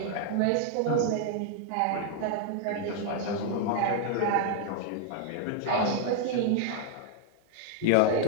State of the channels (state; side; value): different; both; correlation 0.00